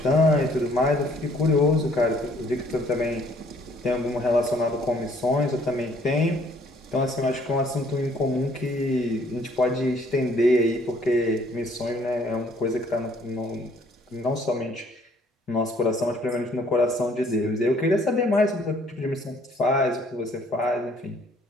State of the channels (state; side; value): normal; both; correlation 0.61